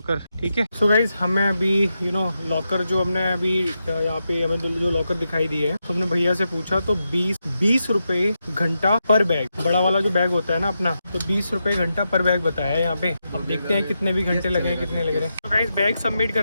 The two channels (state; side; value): inverted; both; correlation -0.86